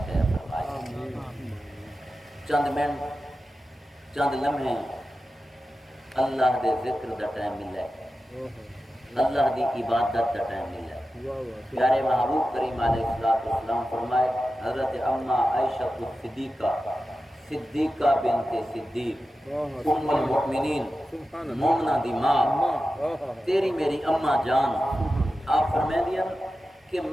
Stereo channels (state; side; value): normal; both; correlation 0.92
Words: خیر فرمائے چند منٹ چند لمحے اللہ دے ذکر دا ٹائم ملے اللہ دی عبادت دا ٹائم ملے پیارے محبوب کریم علیہ السلام فرمائے حضرت اما عائشہ صدیقہ بنت صدیق ام المؤمنین مومنہ دی ماں تیری میری اماں جان آپ فرمائے دیا کہ